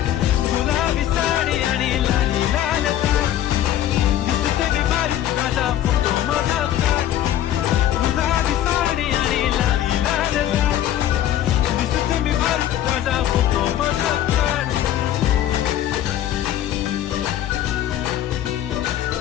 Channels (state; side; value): quieter; right; 12.0 dB